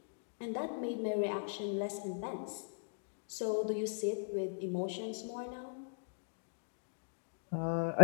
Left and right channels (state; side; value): silent; right; digital silence